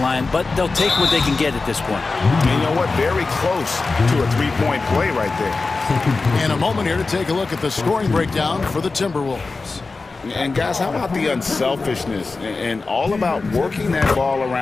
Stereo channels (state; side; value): quieter; right; 3.9 dB